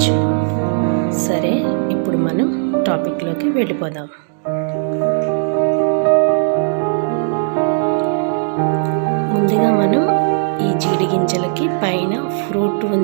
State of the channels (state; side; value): silent; left; digital silence